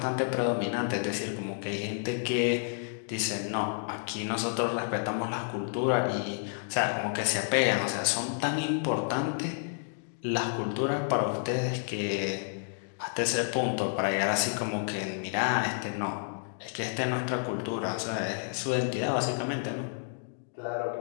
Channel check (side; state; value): right; silent; digital silence